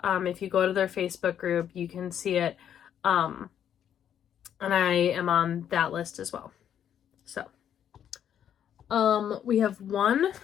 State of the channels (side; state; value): right; quieter; 9.5 dB